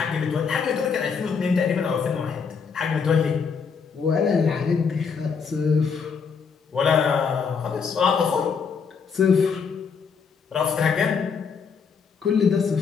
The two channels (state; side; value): quieter; right; 5.9 dB